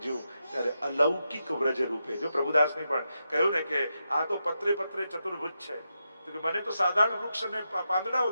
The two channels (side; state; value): both; inverted; correlation -0.86